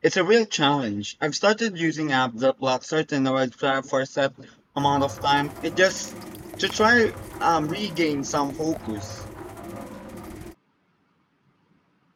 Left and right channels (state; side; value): identical; both; correlation 1.00